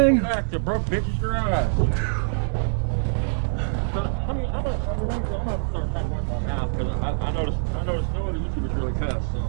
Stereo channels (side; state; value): left; silent; 62 dB below the other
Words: Back to broke bitches garage. I'm gonna start talking with my mouth because I noticed no other YouTubers really cuss.